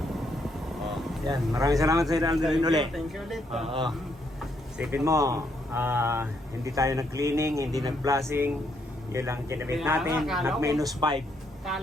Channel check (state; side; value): normal; both; correlation 0.74